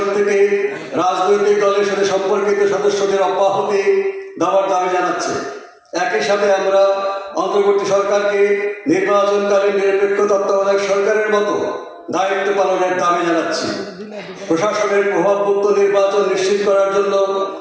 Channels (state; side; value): identical; both; correlation 1.00